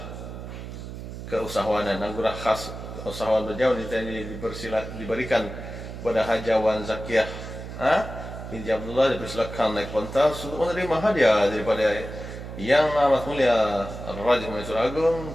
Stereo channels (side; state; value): right; noise; hum, 10 dB below the sound